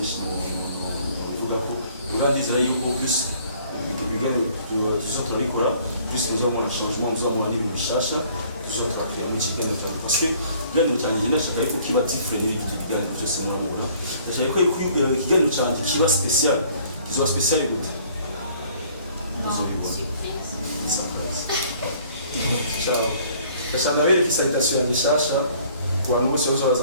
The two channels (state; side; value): inverted; both; correlation -0.57